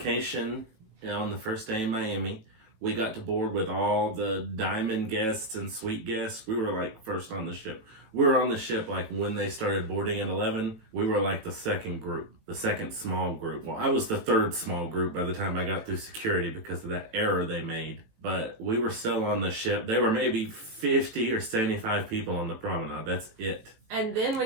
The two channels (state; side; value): late; left; 18 ms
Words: on the first day in Miami. We got to board with all the diamond guests and suite guests. We were like first on the ship. We were on the ship like when they started boarding at 11. We were like the second group, the second small group. Well, I was the third small group by the time I got through security because of that error they made. But we were still on the ship. There were maybe 50 or 75 people on the promenade. That's it. And then